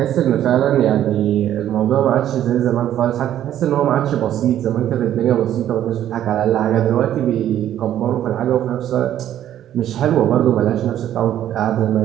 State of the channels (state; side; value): quieter; left; 11.5 dB